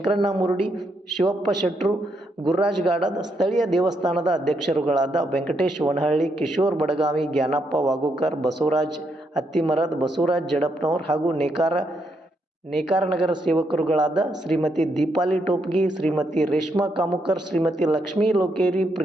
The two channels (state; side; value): normal; both; correlation 0.78